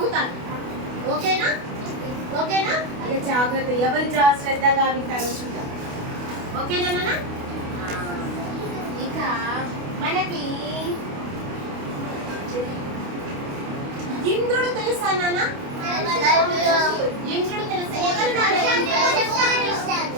ఓకేనా? ఓకేనా? ఇక జాగ్రత్త, ఎవరు శ్రద్ధగా వింటారో చూద్దాం. ఓకేనా నాన్న? ఇక మనకి ఇంద్రుడు తెలుసా నాన్న? ఇంద్రుడు తెలుసా?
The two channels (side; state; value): left; late; 28 ms